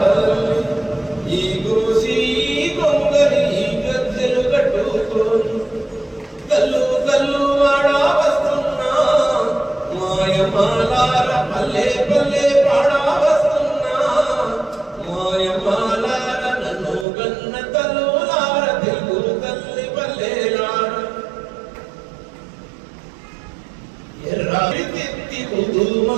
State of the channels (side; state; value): left; drops out; at 17.1 s